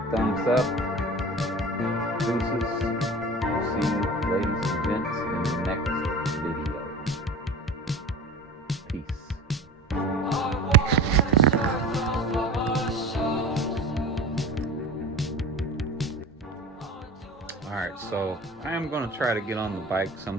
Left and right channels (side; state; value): both; normal; correlation 0.36